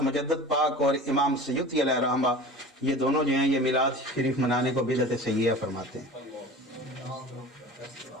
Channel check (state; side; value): normal; both; correlation 0.38